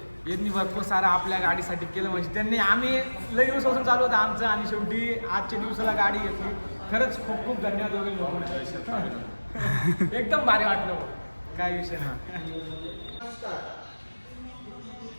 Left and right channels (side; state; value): both; inverted; correlation -1.00